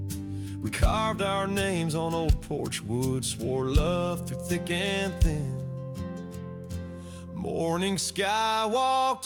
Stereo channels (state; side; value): identical; both; correlation 1.00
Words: We carved our names on old porch wood, swore love through thick and thin. Morning sky walked